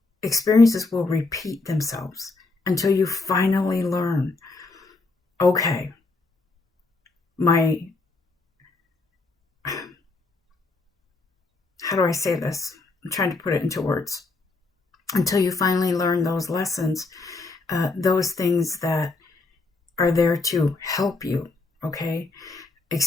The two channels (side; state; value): right; quieter; 3.5 dB